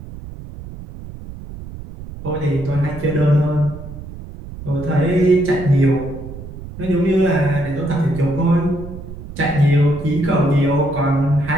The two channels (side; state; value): right; noise; rumble, 13 dB below the sound